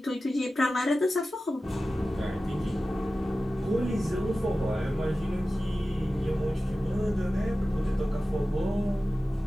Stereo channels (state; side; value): normal; both; correlation 0.95